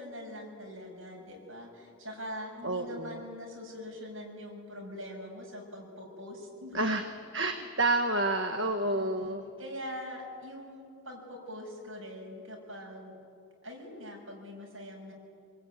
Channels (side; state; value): both; normal; correlation -0.16